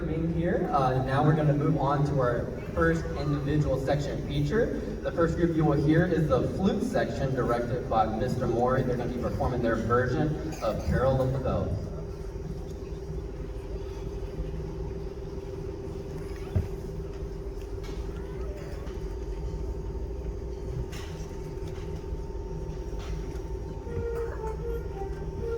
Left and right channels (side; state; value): both; identical; correlation 1.00